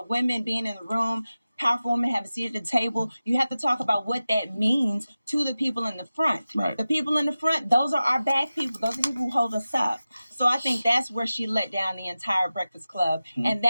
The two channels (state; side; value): inverted; both; correlation -0.95